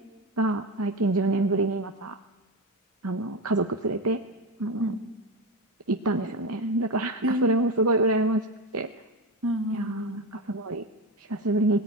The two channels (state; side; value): normal; both; correlation 0.18